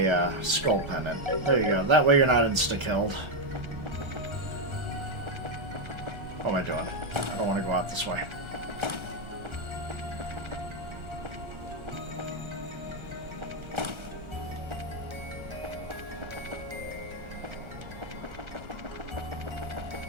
skull pendant. There you go. That way you're not insta-killed. What am I doing? I don't want to go out this way.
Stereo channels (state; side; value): late; left; 1.4 ms